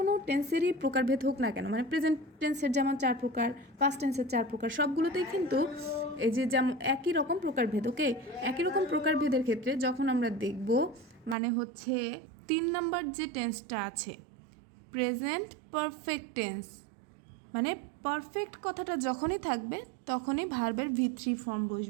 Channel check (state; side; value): drops out; left; at 11.4 s